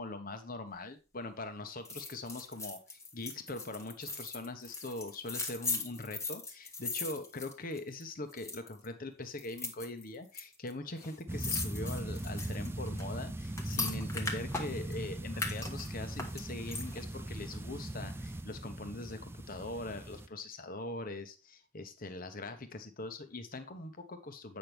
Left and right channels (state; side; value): normal; both; correlation 0.35